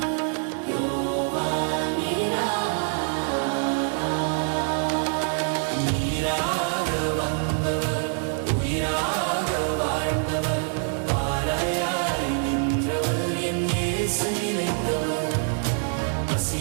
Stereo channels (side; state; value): left; silent; 56 dB below the other